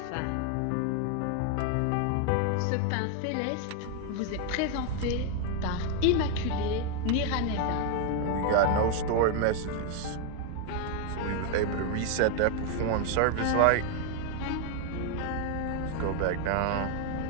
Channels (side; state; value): both; different; correlation 0.00